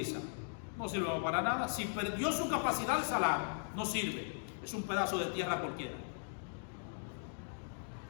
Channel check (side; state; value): right; silent; digital silence